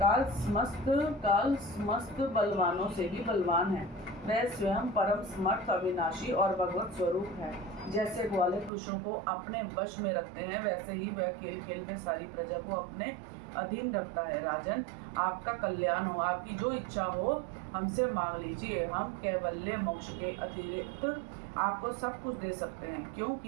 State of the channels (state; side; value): drops out; left; at 8.7 s